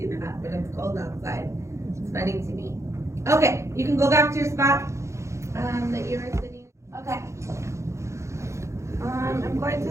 do that when it's cold outside. It's funny to me. Okay, you can go back to your spot that you were sitting. Okay. I'm going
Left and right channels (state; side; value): late; left; 0.14 ms